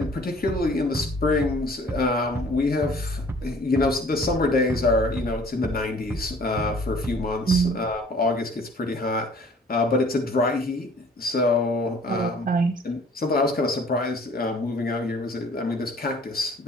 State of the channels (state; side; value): normal; both; correlation 0.53